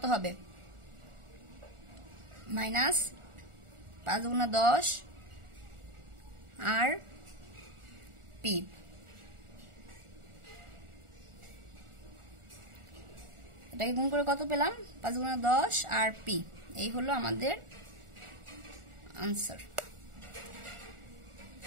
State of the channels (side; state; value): left; late; 1.4 ms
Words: হবে মাইনাস 5 2 10 আর p। এটাকে গুণ করে কত পেলাম 5 2 10 আর p। এই হলো আমাদের আনসার।